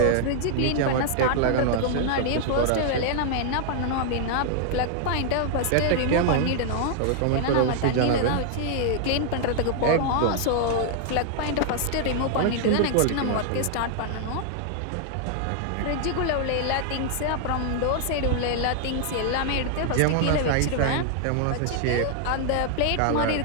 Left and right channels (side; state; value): both; different; correlation 0.00